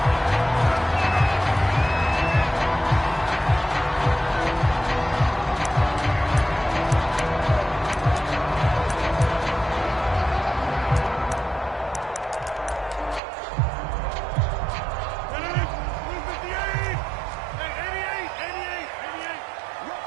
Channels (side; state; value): left; drops out; at 13.2 s